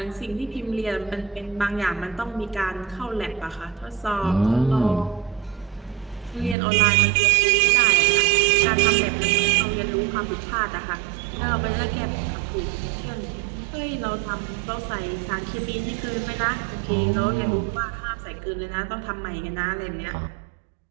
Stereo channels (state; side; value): drops out; left; at 6.6 s